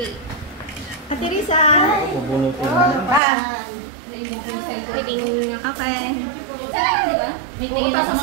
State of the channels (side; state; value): left; drops out; at 3.2 s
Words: Ate Risa. Okay. May tingin na sa